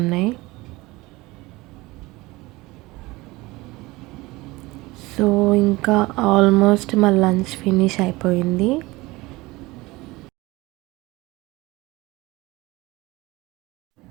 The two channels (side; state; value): left; quieter; 21.2 dB